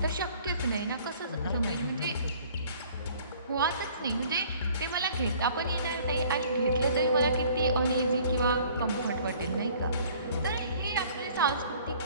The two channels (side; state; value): both; inverted; correlation -0.54